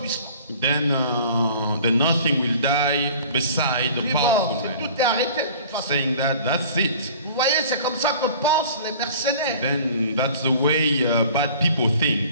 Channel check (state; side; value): inverted; both; correlation -0.46